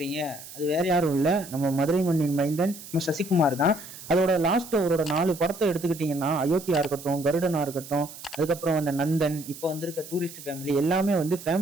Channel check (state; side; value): noise; right; hiss, 15 dB below the sound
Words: அது வேற யாரும் இல்லை, நம்ம மதுரை மண்ணின் மைந்தன் நம்ம சசிகுமார் தான். அதோட லாஸ்ட் அவரோட 4 படத்தை எடுத்துக்கிட்டிங்கன்னா, அயோத்தியா இருக்கட்டும், கருடனா இருக்கட்டும், அதுக்கப்புறம் நந்தன், இப்போ வந்திருக்க டூரிஸ்ட் ஃபேமிலி, எல்லாமே